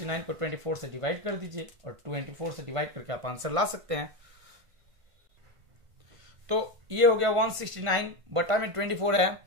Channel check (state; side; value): late; left; 1.5 ms